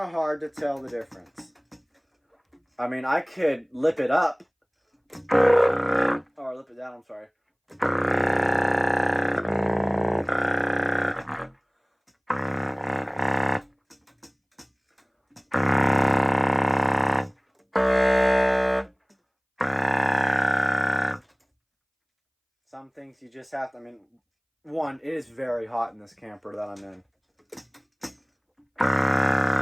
hard to tell the difference. I mean, I could lip it up. Or lip it down, I'm sorry. things you just have to, I mean, one, it is very hot in this camper that I'm in.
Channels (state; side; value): identical; both; correlation 1.00